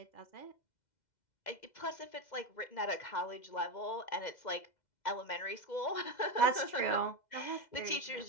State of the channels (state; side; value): late; right; 2.0 ms